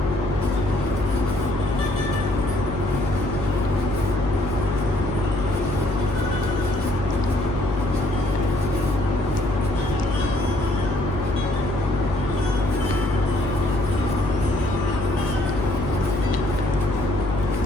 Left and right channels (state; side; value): noise; left; hum, 6 dB below the sound